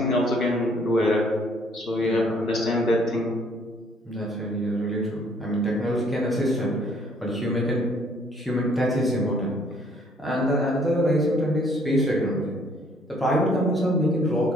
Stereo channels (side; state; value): both; normal; correlation 0.62